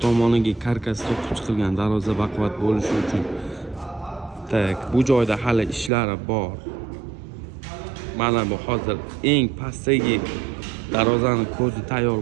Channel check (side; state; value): left; drops out; at 5.9 s